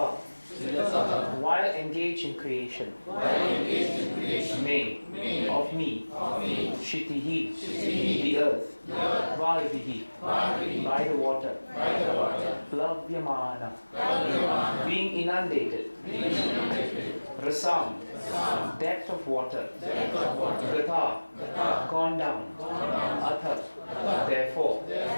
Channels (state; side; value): inverted; both; correlation -1.00